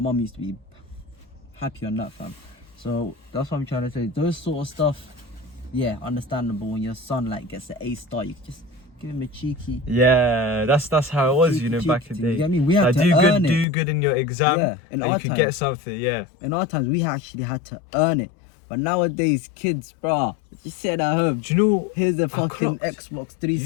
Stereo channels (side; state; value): right; drops out; at 13.7 s